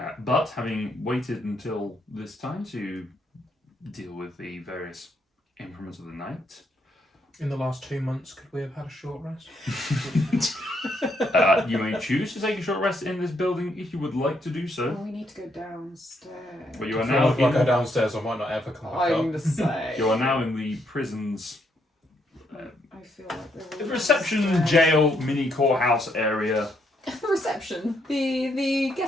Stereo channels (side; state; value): both; normal; correlation 0.75